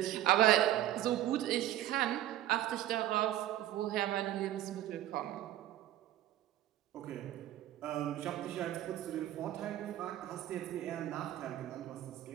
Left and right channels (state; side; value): quieter; left; 13.4 dB